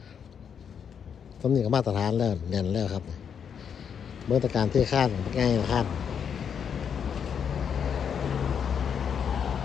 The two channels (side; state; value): right; quieter; 7.5 dB